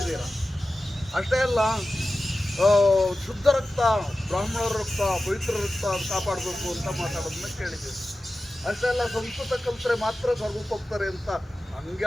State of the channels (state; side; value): normal; both; correlation 0.94